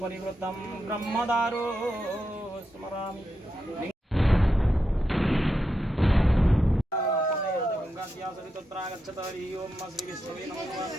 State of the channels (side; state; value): both; normal; correlation 0.86